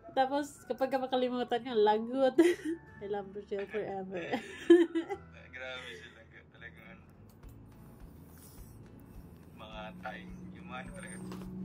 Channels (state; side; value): identical; both; correlation 1.00